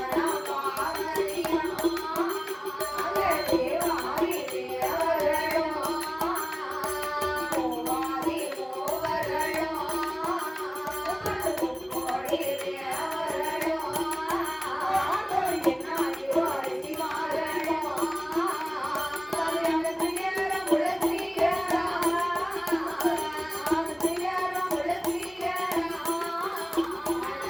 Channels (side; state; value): both; identical; correlation 1.00